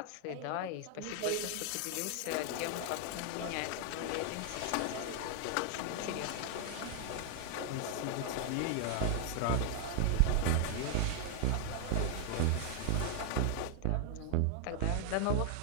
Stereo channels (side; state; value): both; different; correlation 0.00